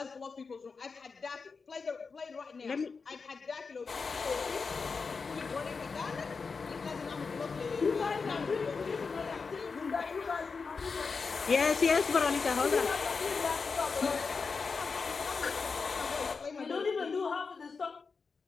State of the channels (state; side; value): quieter; right; 4.9 dB